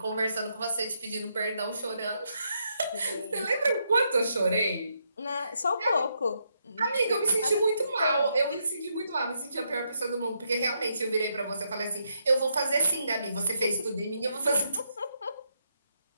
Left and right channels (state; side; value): inverted; both; correlation -0.78